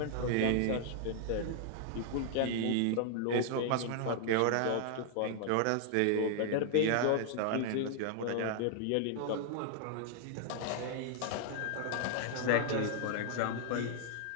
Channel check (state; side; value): different; both; correlation 0.00